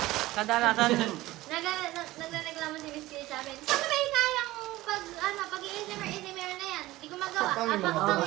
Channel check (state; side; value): quieter; left; 17.6 dB